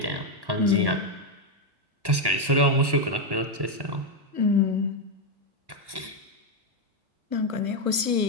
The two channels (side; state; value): left; late; 1.2 ms